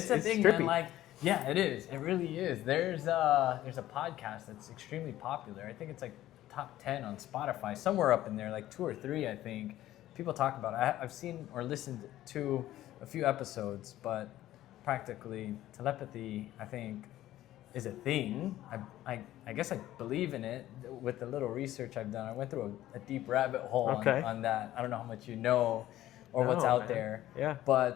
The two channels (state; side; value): quieter; right; 14.1 dB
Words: a thing, trippy. man. Like, yeah, it is. It really is. There's a podcast that's extremely popular. I think it's like top 10 on Spotify, somewhere up in there, like 2 or 3, I think. People talk about it. I've seen or listened to a few episodes, but practically telepathy, I think, is a thing. I guess I believe in it with the little research I've done. I went through a deep rabbit hole on that. I don't know how much you know or what's out there. Yeah.